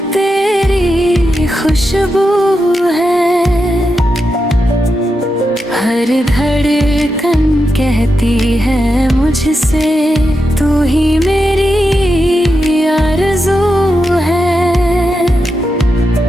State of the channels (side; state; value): both; normal; correlation 0.87